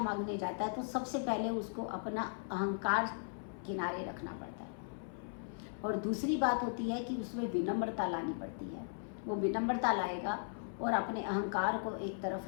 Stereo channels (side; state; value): right; silent; 53 dB below the other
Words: जाता है तो सबसे पहले उसको अपना अहंकार किनारे रखना पड़ता है, और दूसरी बात होती है कि उसमें विनम्रता लानी पड़ती है। वो विनम्रता लाएगा और अपने अहंकार को एक